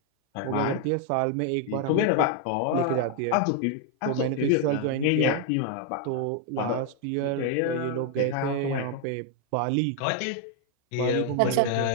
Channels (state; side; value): different; both; correlation 0.00